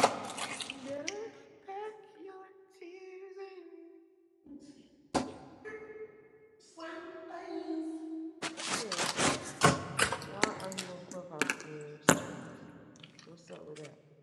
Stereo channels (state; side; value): identical; both; correlation 1.00